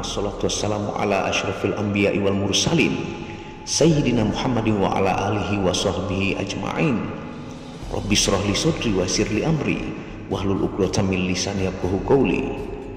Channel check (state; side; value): identical; both; correlation 1.00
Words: wassalamu ala asyrafil anbiya'i wal mursalin sayyidina Muhammadin wa ala alihi wa sahbihi ajma'in. Rabbi shrah li sadri wa yassir li amri wahlul 'uqdatam min lisani yafqahu qawli.